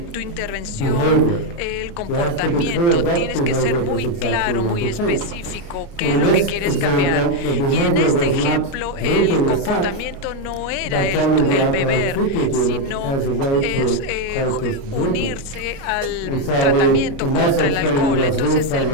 tu intervención el comportamiento. Tienes que ser muy claro, muy específico qué es lo que quieres cambiar. Y en este ejemplo, el comportamiento no era el beber, sino es unirse al tratamiento contra el alcohol. Entonces el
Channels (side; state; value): right; late; 29 ms